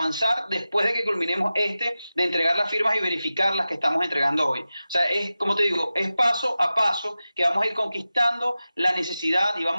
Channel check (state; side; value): inverted; both; correlation -0.94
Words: después de que culminemos de entregar las firmas y verificar las que estamos entregando hoy. O sea, es, como te digo, es paso a paso que vamos a ir conquistando la necesidad y